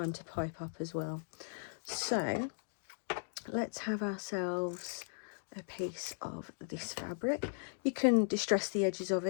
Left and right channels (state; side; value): silent; right; digital silence